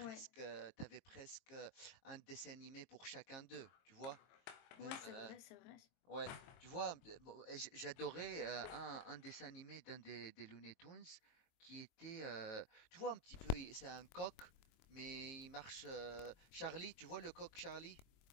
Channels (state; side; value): late; right; 22 ms